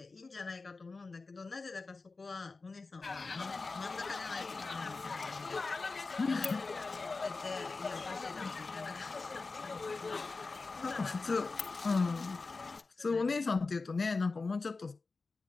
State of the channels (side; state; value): right; quieter; 3.9 dB